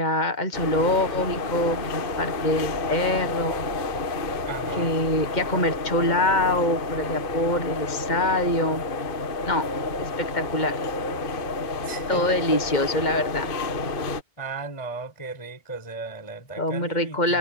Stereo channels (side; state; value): right; late; 2.1 ms